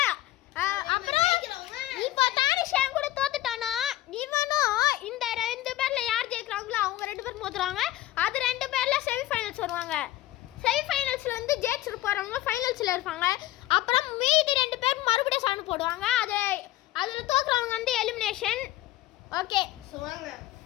அப்புறம் இப்போ தானிஷ் என் கூட தோத்துட்டானா இவனும் இந்த ரெண்டு பேர்ல யார் ஜெயிக்கிறாங்களோ அவங்க ரெண்டு பேர் மோதுறாங்க. அது ரெண்டு பேர்ல செமி ஃபைனல்ஸ் வருவாங்க. செமி ஃபைனல்ஸ்ல வந்து ஜெயிச்சிட்டு போறவங்க ஃபைனல்ஸ்ல இருப்பாங்க. அப்புறம் மீதி ரெண்டு பேர் மறுபடியும் சண்டை போடுவாங்க. அதுல தோக்குறவங்க வந்து எலிமினேஷன். ஓகே சோ வாங்க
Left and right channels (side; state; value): right; quieter; 15.6 dB